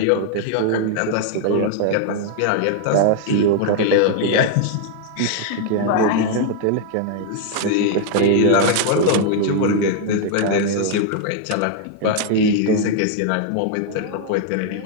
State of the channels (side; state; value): both; different; correlation 0.00